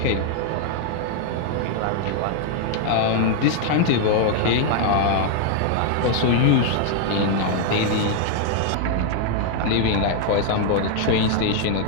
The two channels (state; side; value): different; both; correlation 0.00